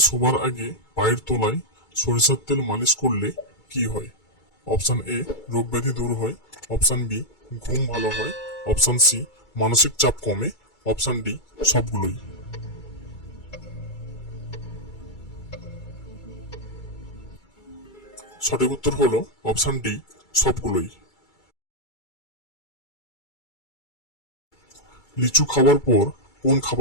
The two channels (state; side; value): late; right; 2.3 ms